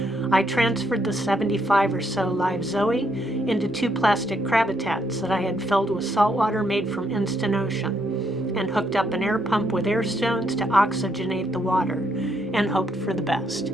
I transferred the 75 or so live zoe into 2 plastic crabbitats that I had filled with saltwater made from instant ocean, and hooked up an air pump with air stones to oxygenate the water, and hoped for the best.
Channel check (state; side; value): normal; both; correlation 0.74